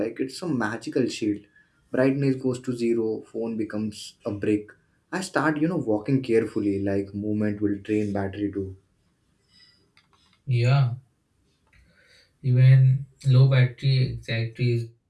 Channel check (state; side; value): identical; both; correlation 1.00